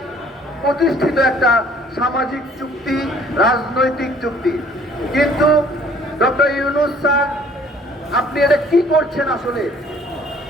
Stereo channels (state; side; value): normal; both; correlation 0.57